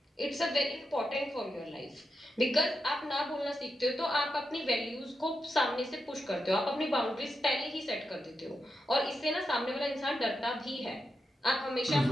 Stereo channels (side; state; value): both; normal; correlation 0.87